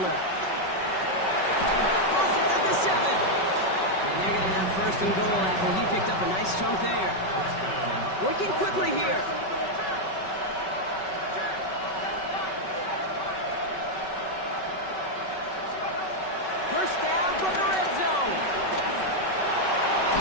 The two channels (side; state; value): right; late; 5.3 ms